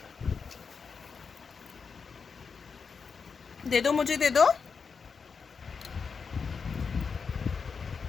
दे दो, मुझे दे दो।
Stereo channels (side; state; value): right; quieter; 5.6 dB